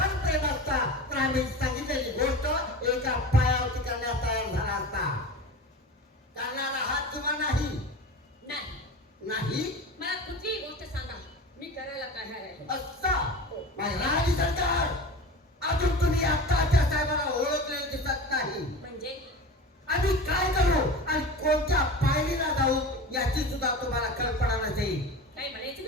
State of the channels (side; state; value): both; normal; correlation 0.32